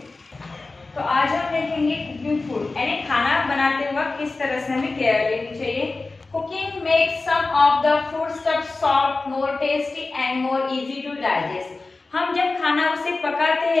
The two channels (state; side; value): quieter; right; 3.6 dB